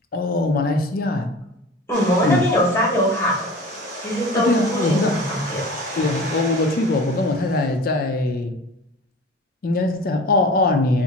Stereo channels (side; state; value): both; normal; correlation 0.39